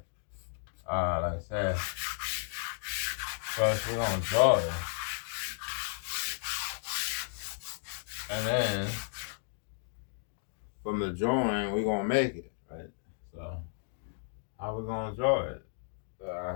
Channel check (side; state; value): right; silent; digital silence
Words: Like I said, first we're gonna draw it, and then from the drawing we're gonna make it, right? So how we gonna draw it?